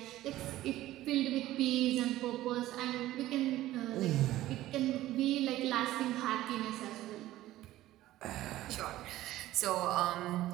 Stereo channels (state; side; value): quieter; left; 15.2 dB